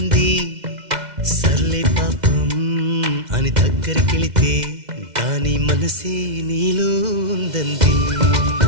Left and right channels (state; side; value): late; left; 2.1 ms